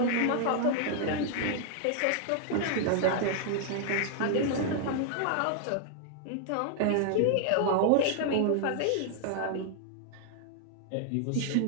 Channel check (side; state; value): both; different; correlation 0.00